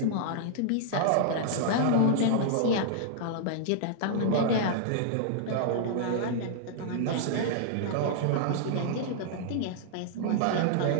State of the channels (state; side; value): different; both; correlation -0.01